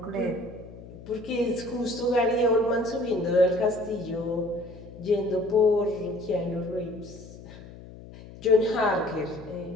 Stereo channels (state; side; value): noise; left; hum, 17 dB below the sound